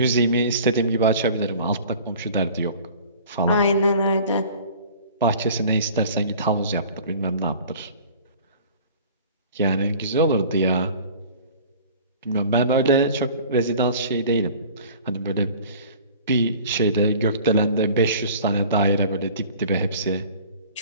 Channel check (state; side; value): inverted; both; correlation -0.45